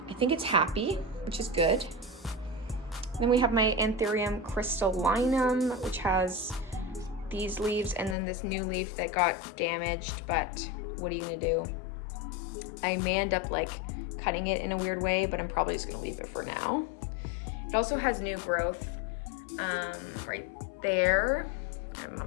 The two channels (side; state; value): right; drops out; at 8.2 s